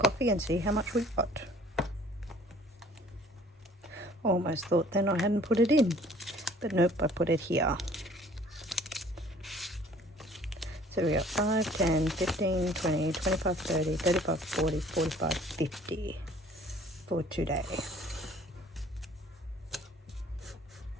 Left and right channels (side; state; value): both; normal; correlation 0.54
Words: and see how much we've got. Almost thought then I hadn't put it in, but nope, I put it here. So we got 5, 10, 15, 20, 25, 30, 35, 40, 45, 50 for today.